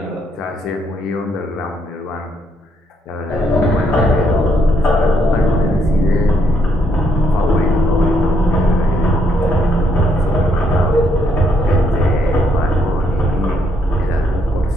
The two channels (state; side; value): normal; both; correlation 0.73